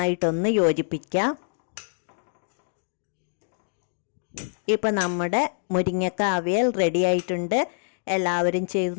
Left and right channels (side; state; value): right; silent; digital silence